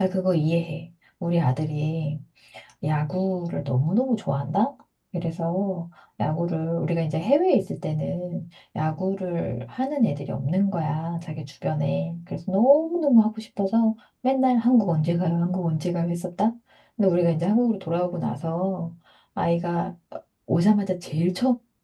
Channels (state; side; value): identical; both; correlation 1.00